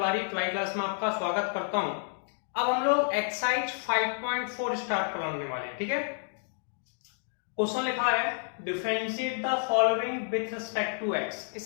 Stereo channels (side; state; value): right; silent; 58 dB below the other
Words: ट्वाई class में आपका स्वागत करता हूं। अब हम लोग एक्सरसाइज 5.4 स्टार्ट करने वाले हैं। ठीक है, क्वेश्चन लिखा है differentiate the following with respect to x.